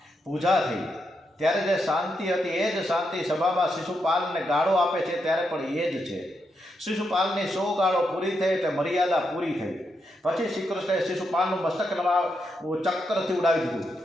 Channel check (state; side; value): normal; both; correlation 0.82